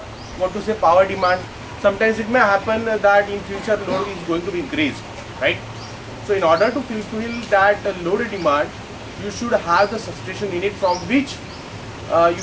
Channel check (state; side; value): identical; both; correlation 1.00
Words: power demand, sometimes it may happen that in future load is going to be increased, right. So in order to fulfill that load demand, you should have the substation unit from which you